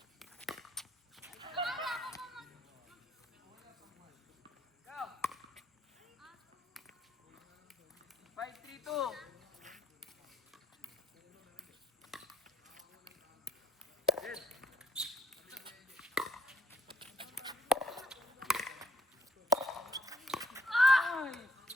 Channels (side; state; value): both; normal; correlation 0.71